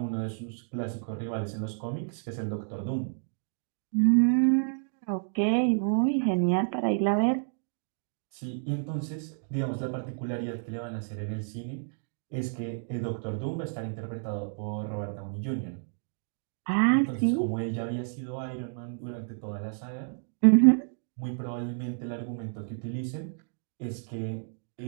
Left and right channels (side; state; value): left; silent; digital silence